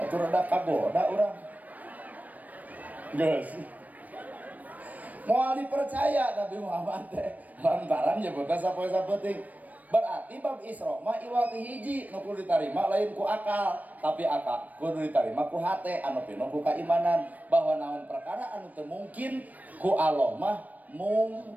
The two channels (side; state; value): left; late; 0.077 ms